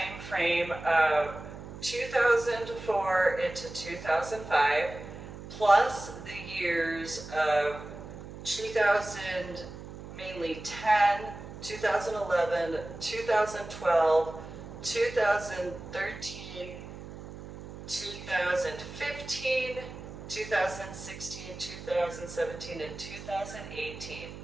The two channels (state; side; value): noise; right; hum, 13 dB below the sound